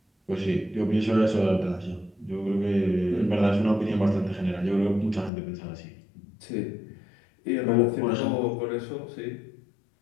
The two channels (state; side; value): drops out; right; at 5.3 s